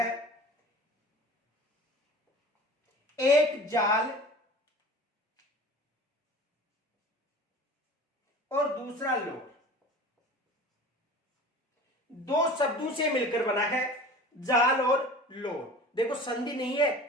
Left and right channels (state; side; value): normal; both; correlation 0.39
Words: एक जाल और दूसरा लोर, दो शब्दों से मिलकर बना है जाल और लोर। देखो, संधि नहीं है,